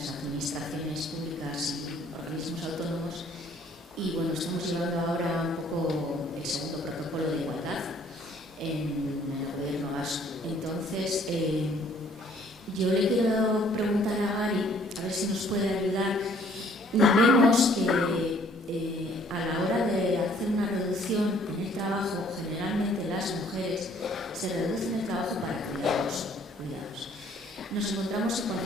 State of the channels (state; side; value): normal; both; correlation 0.60